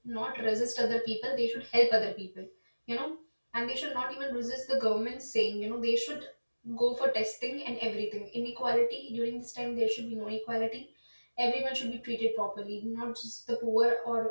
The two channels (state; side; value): inverted; both; correlation -1.00